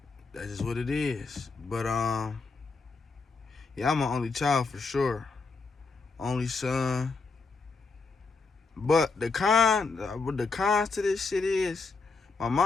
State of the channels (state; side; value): quieter; right; 4.3 dB